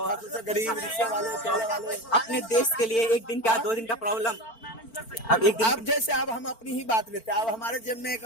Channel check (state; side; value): late; right; 4.4 ms